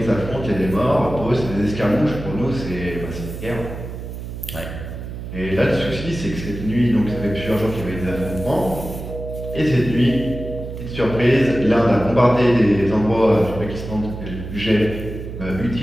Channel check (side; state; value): right; noise; hum, 9 dB below the sound